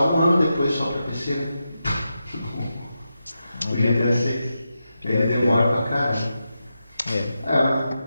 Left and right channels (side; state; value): both; inverted; correlation -0.89